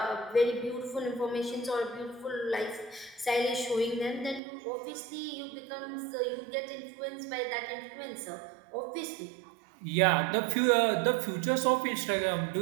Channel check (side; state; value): left; drops out; at 4.4 s